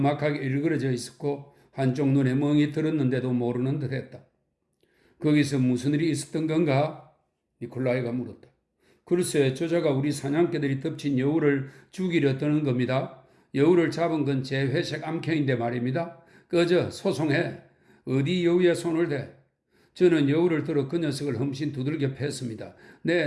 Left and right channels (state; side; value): identical; both; correlation 1.00